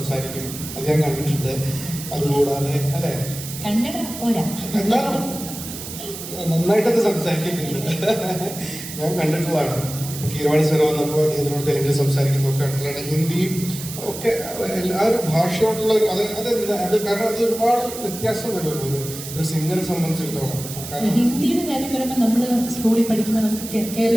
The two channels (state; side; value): noise; right; hiss, 10 dB below the sound